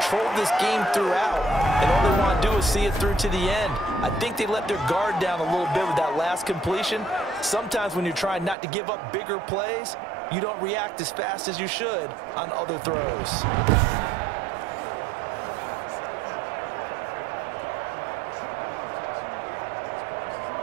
this game throughout, and all they want to do is see it through to the end. I think they let their guard down a little bit with that last completion. Sometimes when you're trying not to give up bigger plays, you don't react as fast as you should on other throws.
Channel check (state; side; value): drops out; left; at 8.6 s